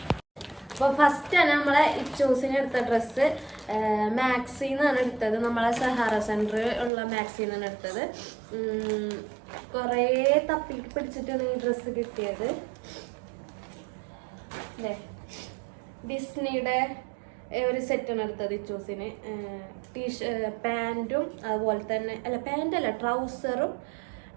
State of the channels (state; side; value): drops out; left; at 6.9 s